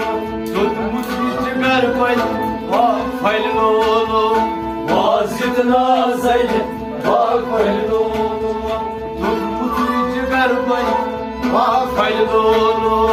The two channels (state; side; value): identical; both; correlation 1.00